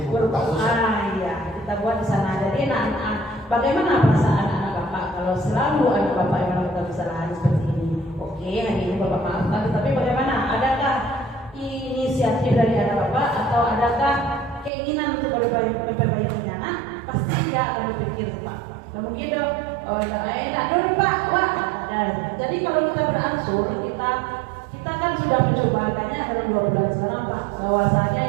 buku kasus. Iya, kita buat di sana. Jadi bagaimana perasaan anak Bapak kalau selalu anak Bapak yang melakukan kesalahan seperti ini? Oke, hari ini Bapak maafkan, tetapi bagaimana? Adakah inisiatif dari anak Bapak atau adakah keinginan untuk memperbaiki anak? Pasti dia akan berpikir Pak. Dan mungkin dong, enak dong Pak, wah. Jadi kalau kita beransur, kita kan sudah mencoba kayaknya dalam 2 bulan sekarang Pak, bahwasanya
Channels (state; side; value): drops out; left; at 14.7 s